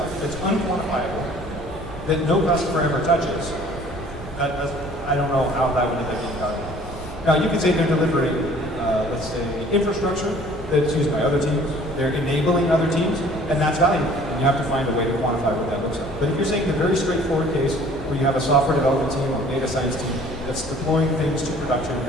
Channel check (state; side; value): normal; both; correlation 0.52